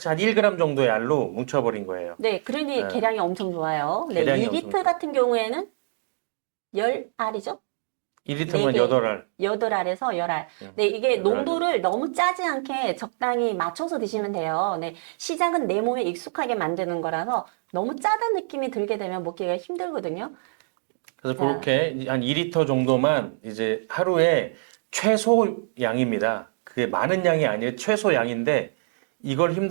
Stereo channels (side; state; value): left; silent; digital silence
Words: 한 1g 정도의 알로 뭉쳐버린 거예요. 네, 그러니 예, 계량이 엄청 좋아요. 네, 계량이 엄청 2리터 좋아요. 같은 경우에는 10알이죠? 1리터면 4개, 8알. 8알에서 10알. 예, 네, 이게 8알 정도. 농도를 너무 짜지 않게 적당히 맞춰서 드시면 돼요. 네, 시작은 내 몸에 익숙하게 만드는 거라서 너무 짜다는 느낌이 들게 되면 먹기가 힘들거든요. 그래서 자, 그렇게 한 2리터 정도만 이제 하루에 최소 양입니다. 그게 많은 양이 아니에요. 최소 양인데 이걸